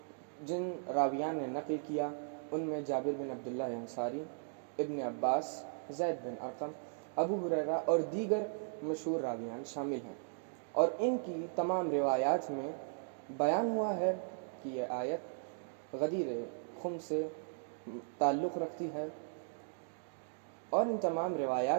جن راویان نے نقل کیا ان میں جابر بن عبداللہ انصاری، ابن عباس، زید بن ارقم، ابو ہریرہ اور دیگر مشہور راویان شامل ہیں، اور ان کی تمام روایات میں بیان ہوا ہے کہ یہ آیت غدیر خم سے تعلق رکھتی ہے، اور ان تمام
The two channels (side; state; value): left; silent; digital silence